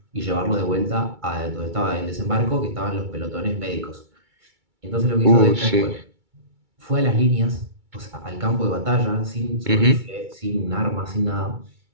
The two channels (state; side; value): late; left; 2.3 ms